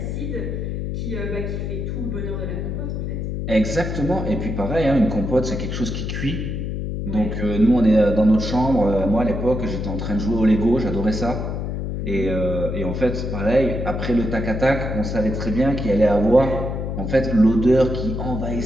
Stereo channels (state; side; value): noise; left; hum, 3 dB below the sound